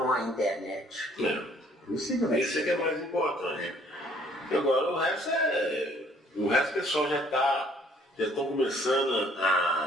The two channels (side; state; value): both; normal; correlation 0.60